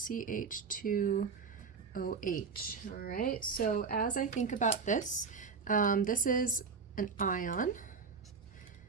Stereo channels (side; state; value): left; quieter; 5.2 dB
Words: All right, so as I think about this, this is an ion